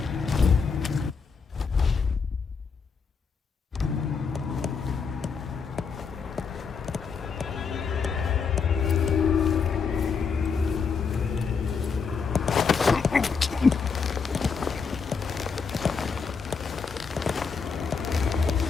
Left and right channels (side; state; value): right; quieter; 5.5 dB